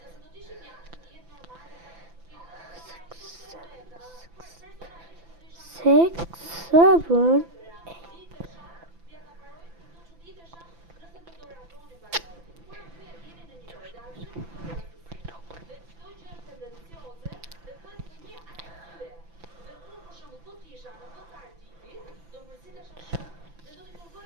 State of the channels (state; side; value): late; left; 5.9 ms